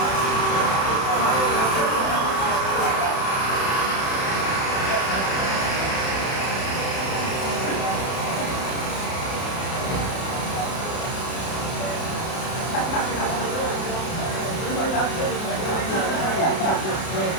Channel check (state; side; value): late; right; 31 ms